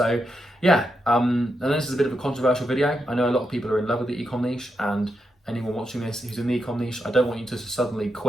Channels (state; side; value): normal; both; correlation 0.84